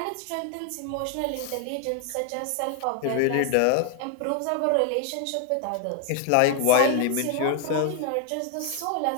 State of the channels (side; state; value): both; different; correlation 0.00